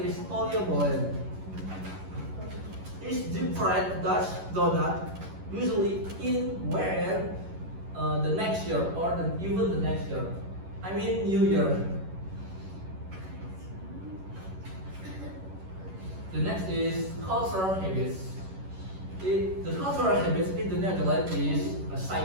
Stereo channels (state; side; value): late; left; 11 ms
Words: oliebollen. is deep fried Dutch donut, usually in where the next year or even the next year. I mean New Year. The next is cultural habits. The cultural habits in the Netherlands is